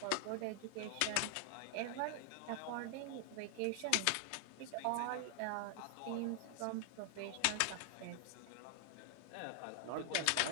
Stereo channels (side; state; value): both; different; correlation 0.00